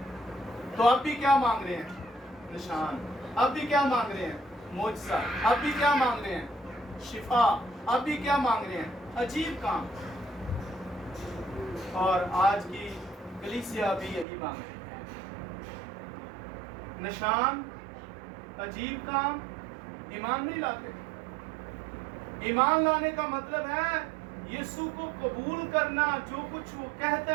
تو اب بھی کیا مانگ رہے ہیں؟ نشان. اب بھی کیا مانگ رہے ہیں؟ معجزہ. اب بھی کیا مانگ رہے ہیں؟ شفا. اب بھی کیا مانگ رہے ہیں؟ عجیب کام. اور آج کی کلیسیا بھی یہی مانگ رہی ہے، نشان، عجیب کام. ایمان نہیں لاتے. ایمان لانے کا مطلب ہے یسوع کو قبول کرنا، جو کچھ وہ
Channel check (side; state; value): left; drops out; at 14.2 s